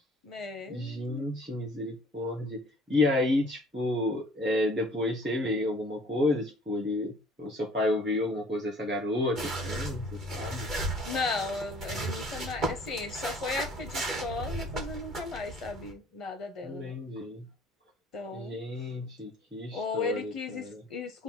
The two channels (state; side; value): normal; both; correlation 0.54